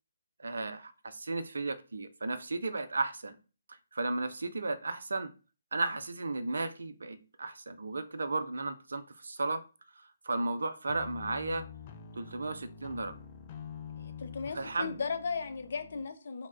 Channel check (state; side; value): inverted; both; correlation -0.88